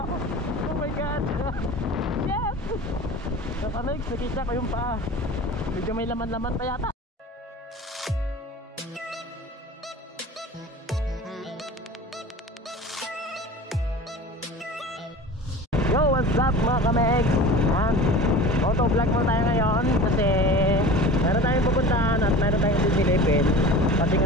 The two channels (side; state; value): both; normal; correlation 0.37